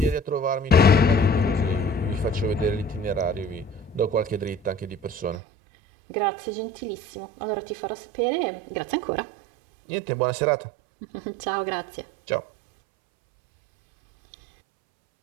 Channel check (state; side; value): drops out; left; at 5.4 s